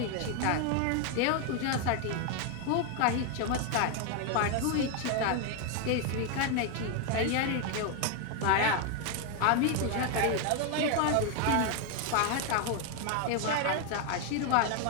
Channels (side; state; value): both; different; correlation 0.01